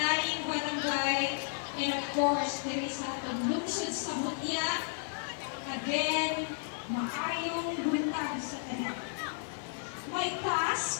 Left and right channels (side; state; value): right; silent; 56 dB below the other